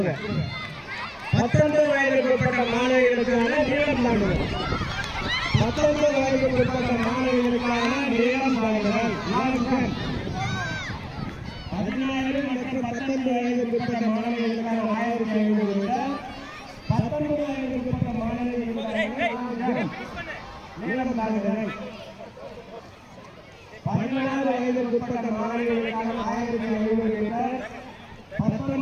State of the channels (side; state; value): both; identical; correlation 1.00